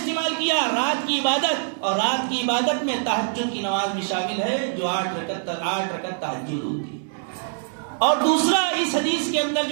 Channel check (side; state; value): left; silent; 59 dB below the other